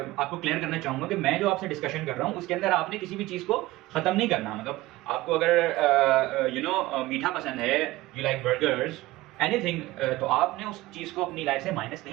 आपको क्लियर करना चाहूँगा कि मैं जो आपसे डिस्कशन कर रहा हूँ उसके अंदर आपने किसी भी चीज़ को ख़त्म नहीं करना। मतलब आपको अगर मीठा पसंद है, यू लाइक बर्गर्स, एनीथिंग, तो आपने उस चीज़ को अपनी लाइफ से माइनस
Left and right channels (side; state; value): left; quieter; 18.3 dB